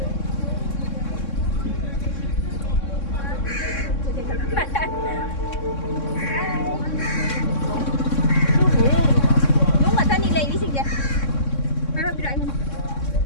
đúng là thân đi lấy đi xin vậy hai ba birai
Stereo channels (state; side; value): late; right; 3.6 ms